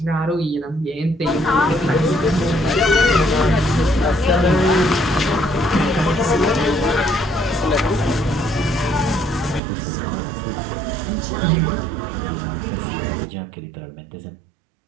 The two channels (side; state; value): left; drops out; at 9.6 s